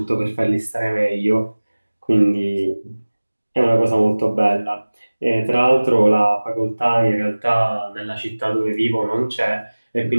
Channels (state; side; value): inverted; both; correlation -1.00